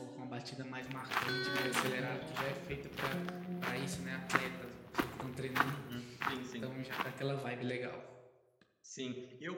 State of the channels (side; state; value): both; identical; correlation 1.00